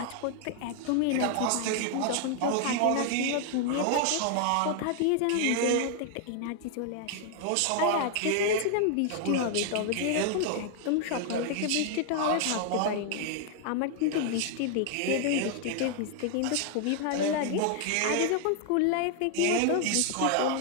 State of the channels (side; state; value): both; different; correlation 0.00